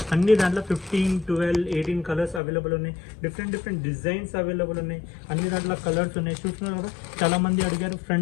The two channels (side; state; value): right; drops out; at 2.4 s